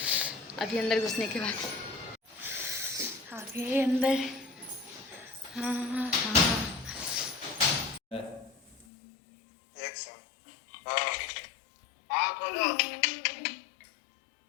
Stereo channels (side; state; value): right; drops out; at 8.8 s